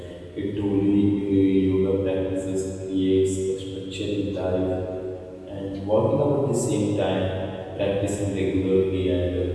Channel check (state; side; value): identical; both; correlation 1.00